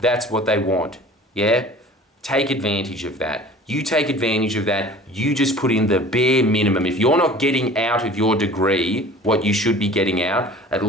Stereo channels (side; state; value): both; normal; correlation 0.45